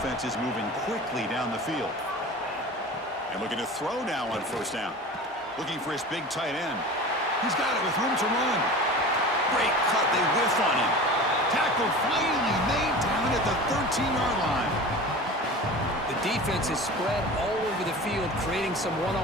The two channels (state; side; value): normal; both; correlation 0.35